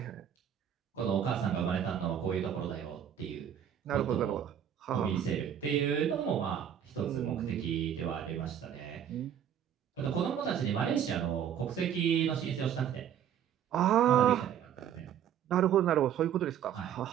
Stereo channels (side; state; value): left; quieter; 9.3 dB